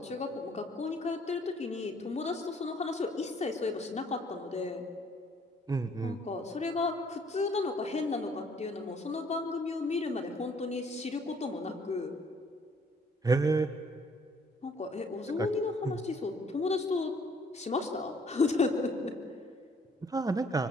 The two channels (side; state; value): both; normal; correlation 0.62